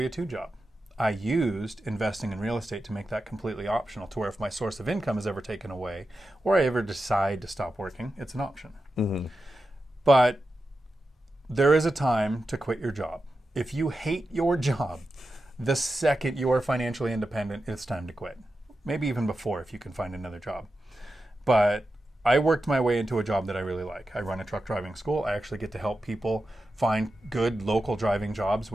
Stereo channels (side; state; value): both; normal; correlation 0.91